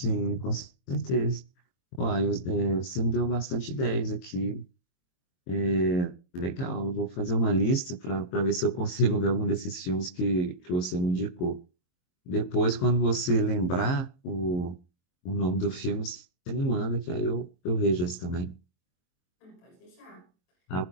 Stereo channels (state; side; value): late; right; 22 ms